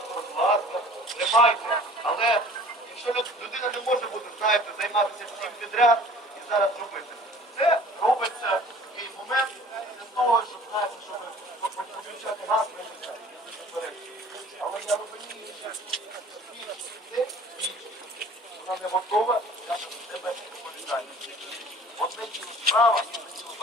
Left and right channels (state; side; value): normal; both; correlation 0.48